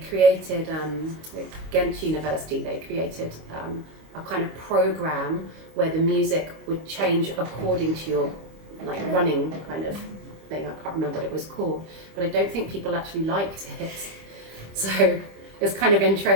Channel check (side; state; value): left; late; 25 ms